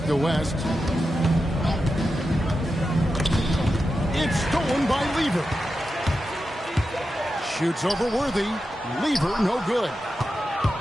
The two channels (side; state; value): both; normal; correlation 0.90